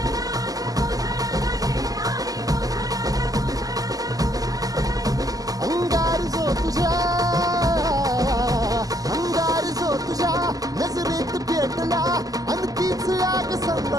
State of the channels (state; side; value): late; left; 0.17 ms